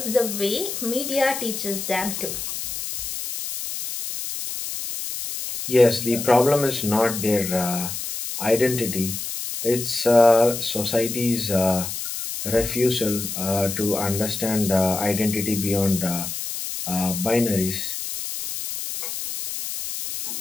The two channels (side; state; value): left; noise; hiss, 6 dB below the sound